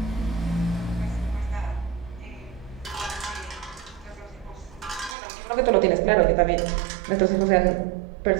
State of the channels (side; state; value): left; drops out; at 5.2 s